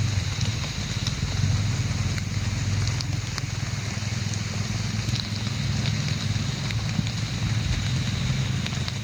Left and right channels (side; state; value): left; noise; hiss, 28 dB below the sound